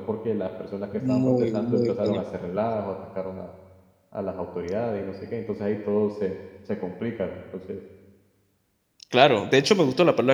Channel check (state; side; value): identical; both; correlation 1.00